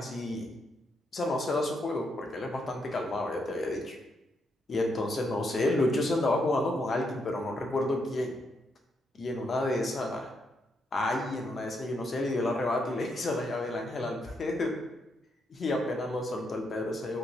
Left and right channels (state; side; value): normal; both; correlation 0.78